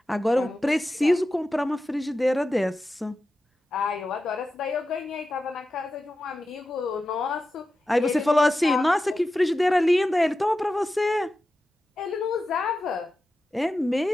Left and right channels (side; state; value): both; normal; correlation 0.92